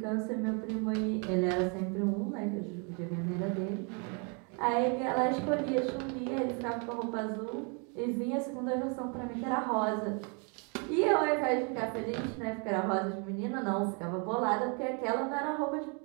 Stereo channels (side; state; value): left; quieter; 36.1 dB